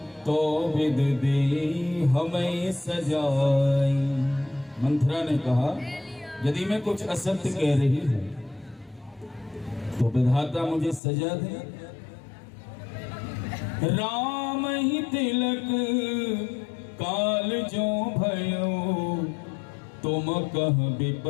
तो विद दे हमें सजाई। मंथरा ने कहा, यदि मैं कुछ असत्य कह रही हूँ तो विधाता मुझे सजा दे। राम ही तिलक काल जो भयो, तुम कह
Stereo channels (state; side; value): drops out; right; at 11.0 s